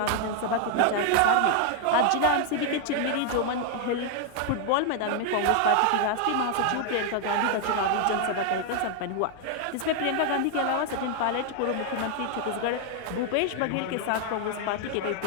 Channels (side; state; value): both; different; correlation 0.00